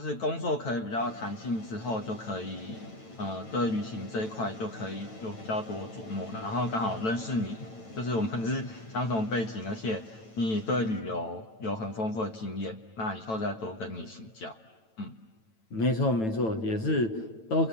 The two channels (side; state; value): right; late; 9.1 ms